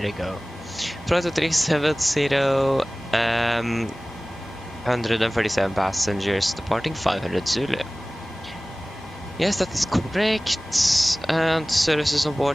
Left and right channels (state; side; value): normal; both; correlation 0.98